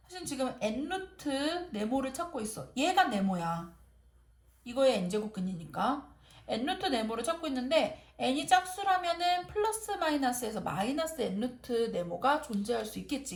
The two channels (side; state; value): both; identical; correlation 1.00